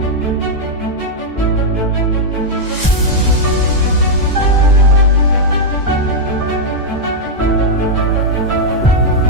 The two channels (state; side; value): normal; both; correlation -0.03